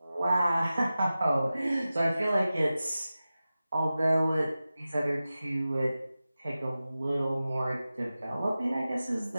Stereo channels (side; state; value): both; inverted; correlation -0.95